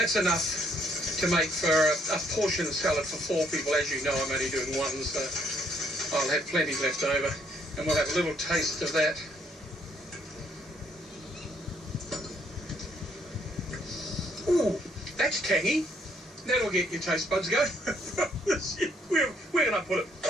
enough to make for a portion of salad for 4 people. As you know, I'm only doing 1, so I'll have plenty left over, and we'll have a little taste of that. Ooh, that's tangy. That'll get your taste buds going. Where can I put it?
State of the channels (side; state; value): both; normal; correlation 0.68